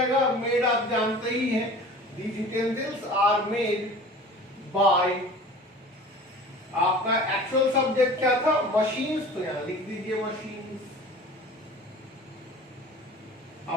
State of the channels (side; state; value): both; normal; correlation 0.42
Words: मेड आप जानते ही हैं। These utensils are made by, आपका एक्चुअल सब्जेक्ट क्या था, मशीन्स, तो यहां लिख दीजिए मशीन्स।